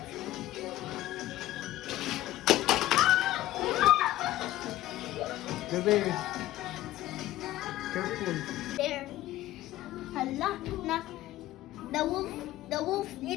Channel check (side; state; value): right; quieter; 15.2 dB